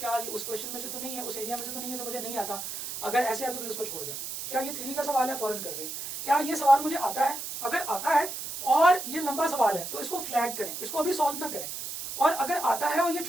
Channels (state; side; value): noise; right; hiss, 7 dB below the sound